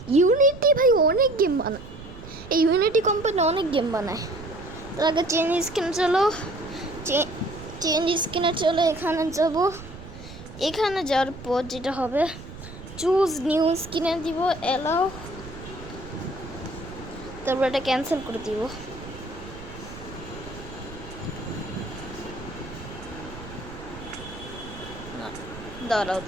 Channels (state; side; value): noise; right; rumble, 14 dB below the sound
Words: ইউনিটি ভাই অনেক গেম বানায়, এই ইউনিটি কোম্পানি অনেক গেম বানায়। তার আগে চেঞ্জ স্ক্রিনে চলো, এখানে যাবো। এখানে যাওয়ার পর যেটা হবে, চুজ নিউ স্ক্রিনে দিব, এলাও, তারপর এটা ক্যান্সেল করে দিব। দাঁড়াও